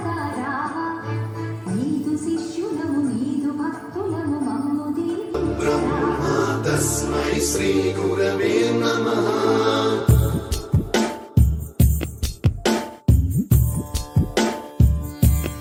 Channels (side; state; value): both; identical; correlation 1.00